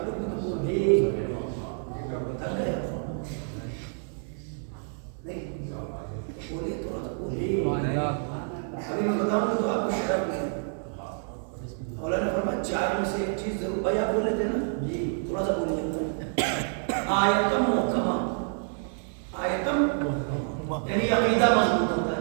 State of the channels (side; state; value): left; silent; 59 dB below the other